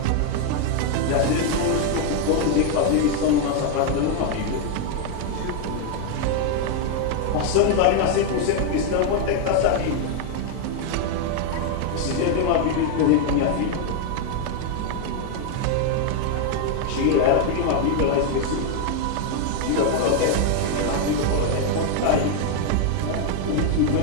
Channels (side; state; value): both; different; correlation 0.00